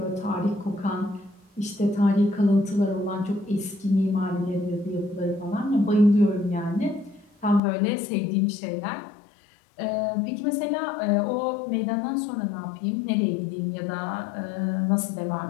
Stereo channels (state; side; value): drops out; right; at 7.6 s